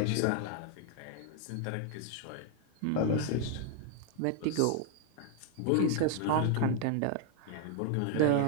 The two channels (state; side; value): different; both; correlation 0.00